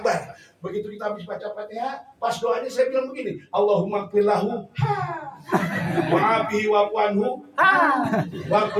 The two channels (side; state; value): both; identical; correlation 1.00